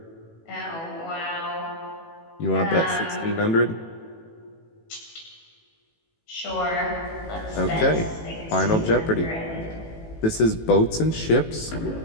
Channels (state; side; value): late; right; 18 ms